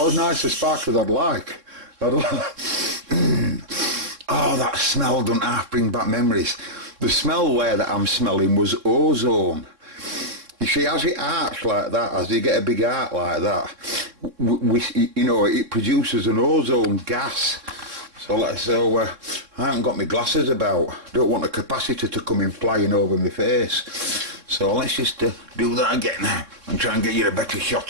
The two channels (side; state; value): left; late; 3.7 ms